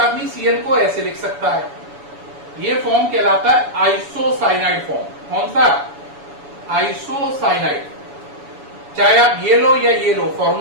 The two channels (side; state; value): left; late; 7.0 ms